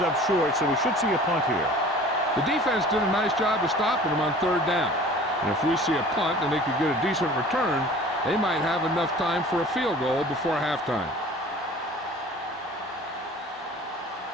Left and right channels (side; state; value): both; normal; correlation 0.45